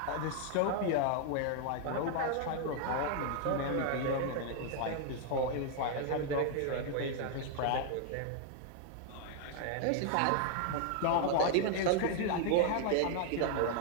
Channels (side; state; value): both; different; correlation 0.00